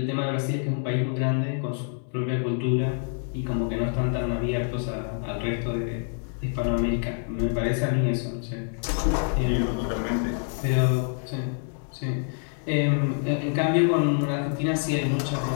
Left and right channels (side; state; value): right; silent; 59 dB below the other